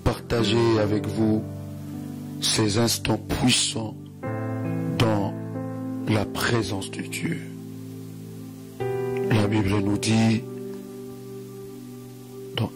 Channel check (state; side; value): identical; both; correlation 1.00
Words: avec vous ces instants puissants dans la présence de Dieu. La Bible nous dit dans